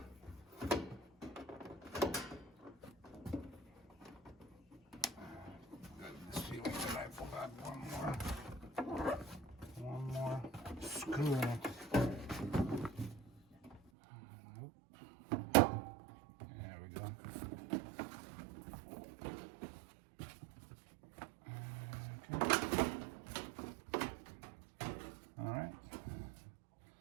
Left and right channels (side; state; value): left; drops out; at 13.8 s